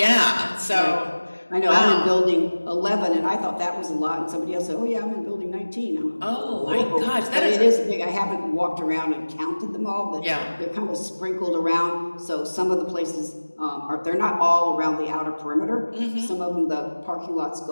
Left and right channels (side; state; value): both; inverted; correlation -1.00